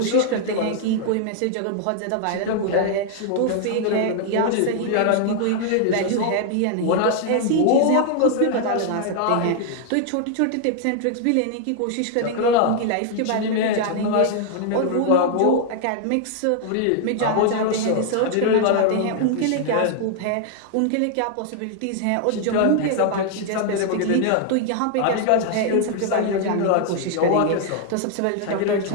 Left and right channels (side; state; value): both; different; correlation 0.00